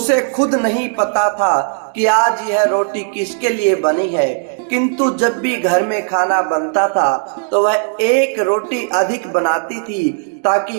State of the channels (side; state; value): left; silent; 69 dB below the other